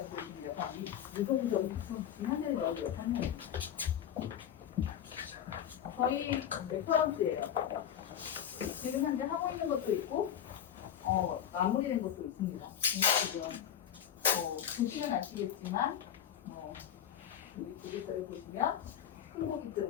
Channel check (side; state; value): right; quieter; 9.6 dB